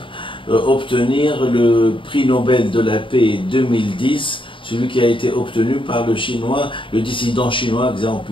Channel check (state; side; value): late; right; 0.25 ms